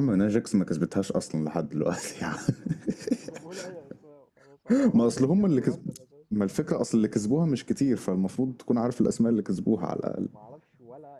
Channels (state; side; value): identical; both; correlation 1.00